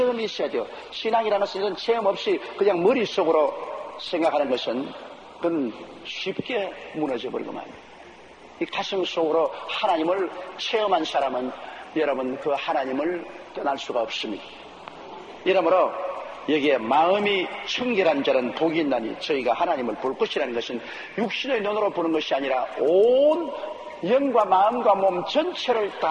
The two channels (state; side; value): identical; both; correlation 1.00